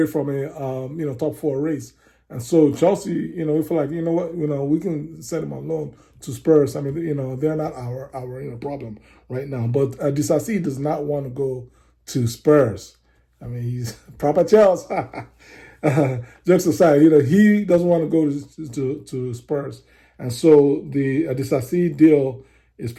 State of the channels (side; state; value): both; identical; correlation 1.00